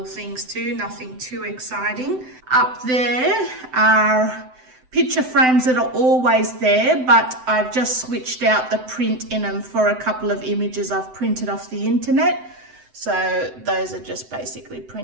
things to, nothing too exciting. Up there are picture frames that are always there, but I've just switched out the print in them for a couple of images I've printed off the internet. So those are just basically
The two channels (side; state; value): left; late; 7.9 ms